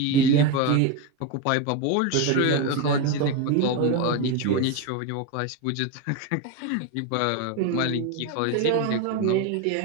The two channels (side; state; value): both; different; correlation 0.03